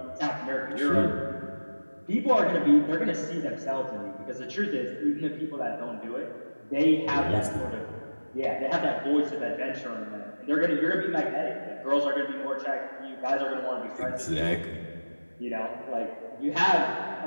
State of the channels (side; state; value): both; inverted; correlation -1.00